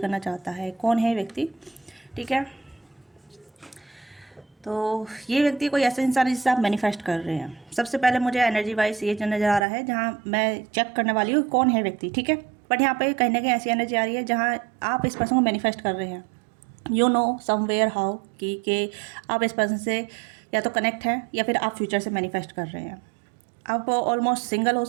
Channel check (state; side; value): drops out; left; at 9.7 s